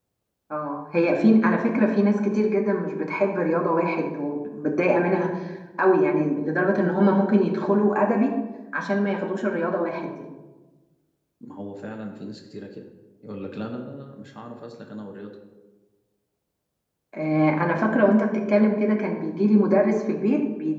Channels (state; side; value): identical; both; correlation 1.00